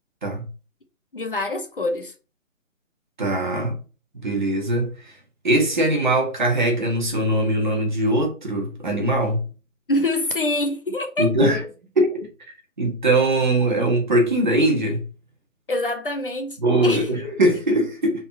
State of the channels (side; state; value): both; normal; correlation 0.09